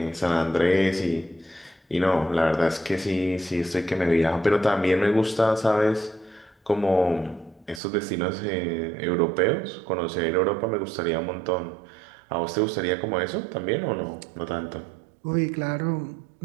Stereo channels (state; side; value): drops out; left; at 7.8 s